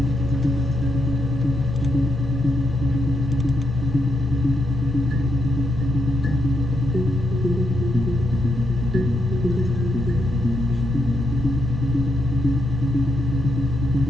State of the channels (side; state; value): both; normal; correlation 0.81